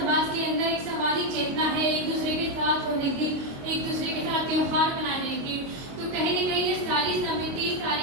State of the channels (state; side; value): late; left; 22 ms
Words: के अंदर एक सामाजिक चेतना है, एक दूसरे के साथ होने की, एक दूसरे के साथ त्योहार मनाने की। तो कहीं ना कहीं ये सारी समिति,